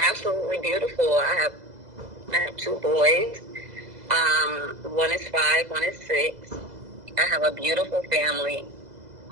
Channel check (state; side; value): late; left; 2.0 ms